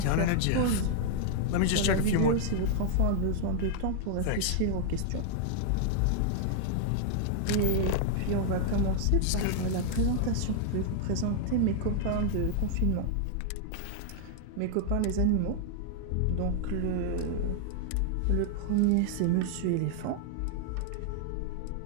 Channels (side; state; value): both; different; correlation 0.00